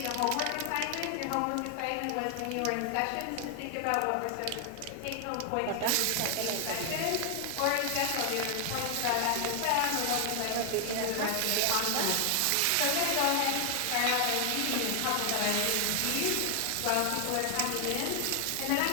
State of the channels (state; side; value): different; both; correlation 0.00